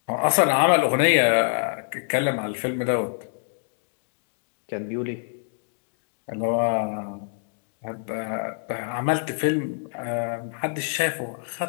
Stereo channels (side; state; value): right; silent; digital silence